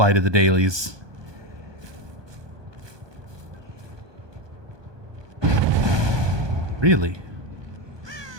to the dailies? Really?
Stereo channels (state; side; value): late; left; 1.2 ms